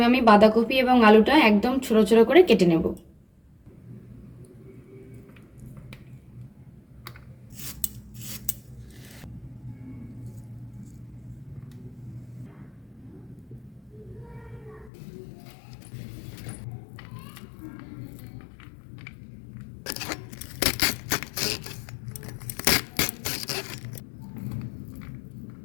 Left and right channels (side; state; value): right; drops out; at 14.9 s